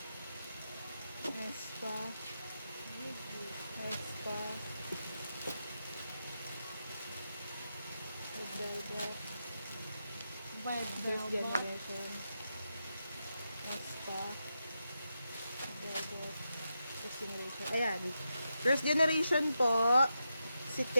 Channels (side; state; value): both; inverted; correlation -0.87